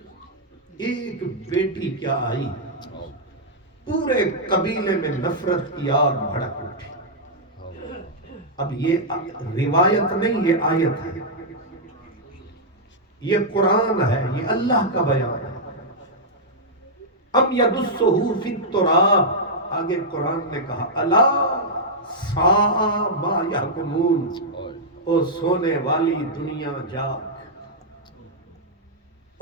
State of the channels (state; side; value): normal; both; correlation -0.07